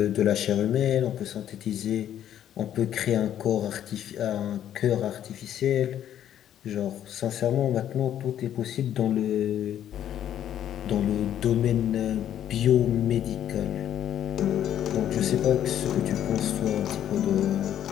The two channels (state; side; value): quieter; right; 10.7 dB